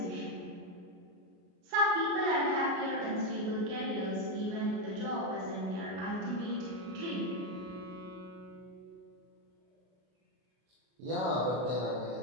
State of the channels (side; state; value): left; late; 33 ms